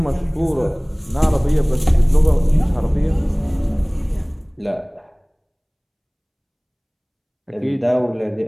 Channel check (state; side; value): identical; both; correlation 1.00